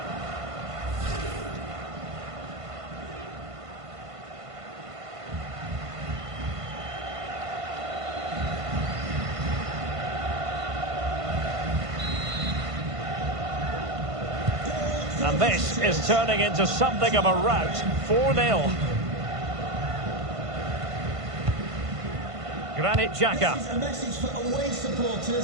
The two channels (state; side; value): late; left; 1.5 ms